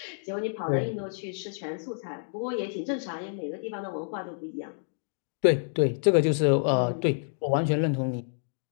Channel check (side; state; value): right; silent; digital silence